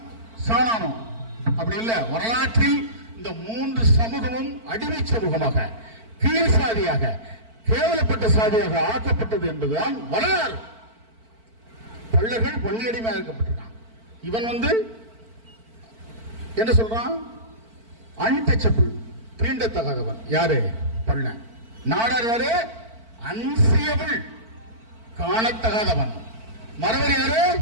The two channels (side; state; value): left; late; 4.5 ms